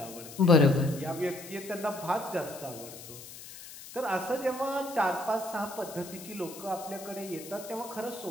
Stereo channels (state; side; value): noise; left; hiss, 14 dB below the sound